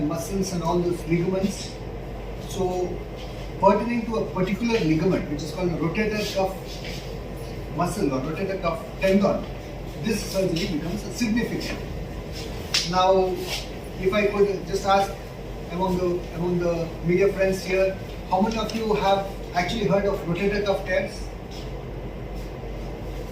muscles and all those ligaments. So pertaining to a particular ligament, which is called the rotator cuff muscle or rotator cuff tendon, this surgery becomes significant. Now, if I could just ask among the media friends here, how many of you have actually heard of rotator cuff tears?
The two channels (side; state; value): both; identical; correlation 1.00